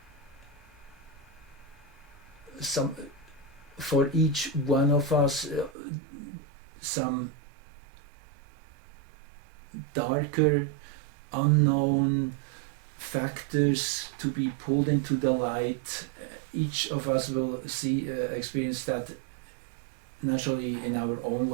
for each one of us some darker, unknown factors to be pulled into the light. Each of us will experience that naturally in our own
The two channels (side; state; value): left; drops out; at 5.8 s